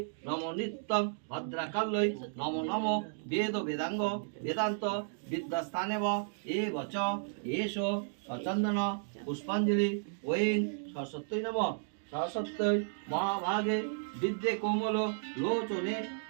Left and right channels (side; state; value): left; silent; digital silence